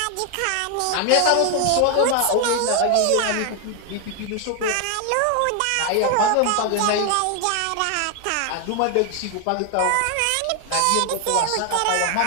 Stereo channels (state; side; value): different; both; correlation 0.00